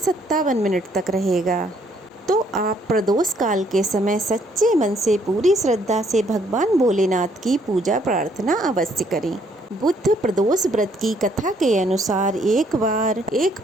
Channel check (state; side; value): normal; both; correlation 0.67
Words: तक रहेगा। तो आप प्रदोष काल के समय सच्चे मन से पूरी श्रद्धा से भगवान भोलेनाथ की पूजा प्रार्थना अवश्य करें। बुध प्रदोष व्रत की कथा के अनुसार एक बार एक